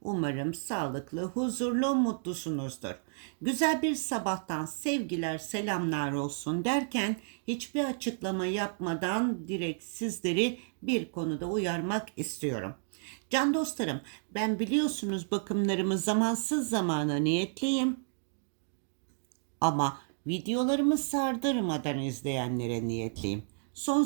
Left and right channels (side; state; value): left; silent; digital silence